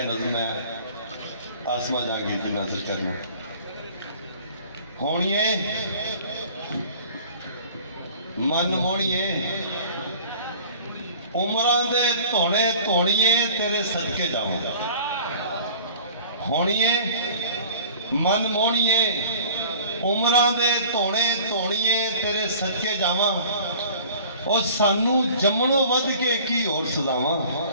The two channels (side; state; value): both; inverted; correlation -0.47